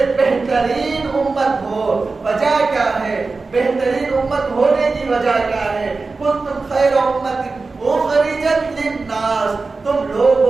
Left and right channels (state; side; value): quieter; left; 3.9 dB